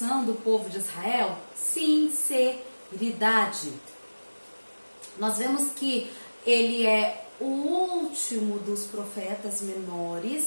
do povo de Israel sinceridade. Nós vemos que ele é o último dos profetas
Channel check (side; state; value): both; inverted; correlation -1.00